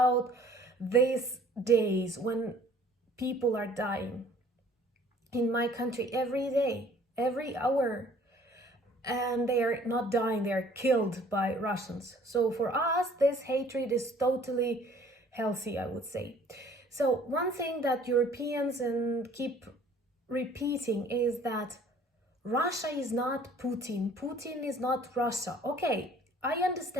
these days when people are dying. In my country, every day, every hour, and they are not dying, they are killed by Russians. So for us, this hatred is totally healthy, I would say. So one thing that Europeans keep repeating is that Russia is not Putin. Putin is not Russia. Okay, I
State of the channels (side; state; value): both; normal; correlation 0.54